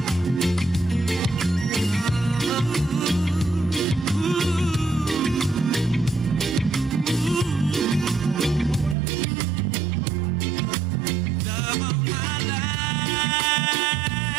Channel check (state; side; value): drops out; left; at 9.0 s